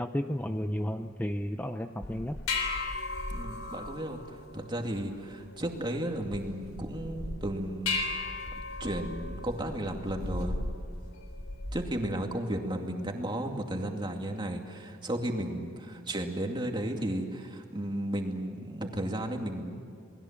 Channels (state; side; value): normal; both; correlation 0.64